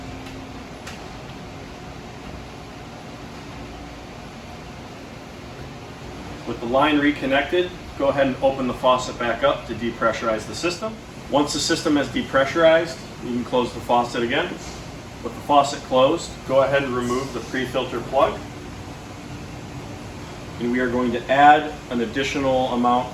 With the line reconnected, go ahead and open the faucet back up to depressurize the system. Once the system has depressurized, you can close the faucet again. With the faucet closed, go ahead and remove the pre-filter plug. And we are going to add an additional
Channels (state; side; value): identical; both; correlation 1.00